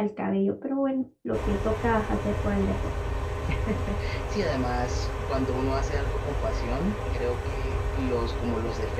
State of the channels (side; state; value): both; identical; correlation 1.00